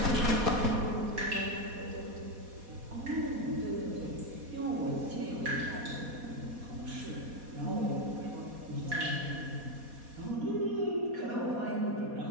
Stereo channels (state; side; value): late; left; 4.2 ms